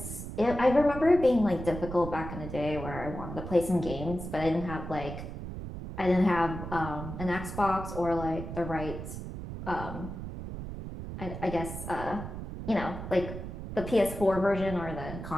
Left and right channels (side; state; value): right; noise; rumble, 8 dB below the sound